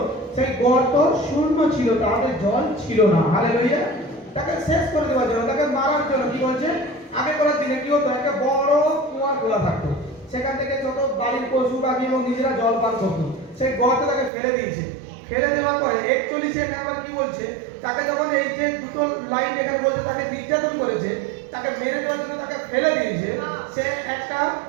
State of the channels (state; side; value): drops out; left; at 14.3 s